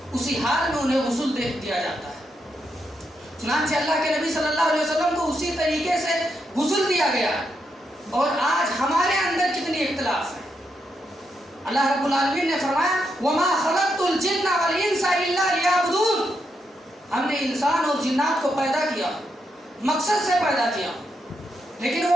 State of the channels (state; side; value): normal; both; correlation 0.82